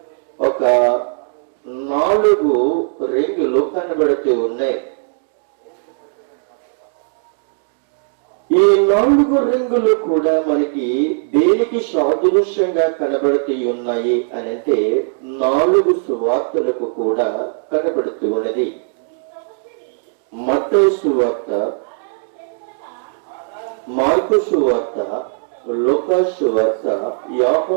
ఒక 4 రింగులు కనబడుతూ ఉన్నాయి. ఈ 4 రింగులు కూడా మనకి దేనికి సాదృశ్యంగా కనబడుతూ ఉన్నాయి అనంటే 4 సువార్తలకు కూడా కనబడుతూ ఉన్నది. మత్తయి సువార్త, మార్కు సువార్త, లూకా సువార్త,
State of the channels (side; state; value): left; silent; digital silence